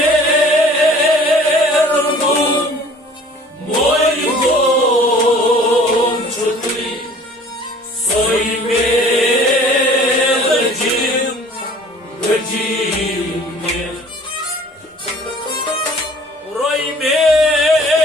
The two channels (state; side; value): normal; both; correlation 0.50